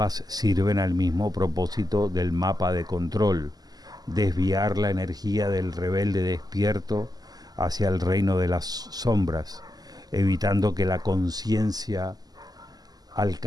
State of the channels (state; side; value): late; left; 0.19 ms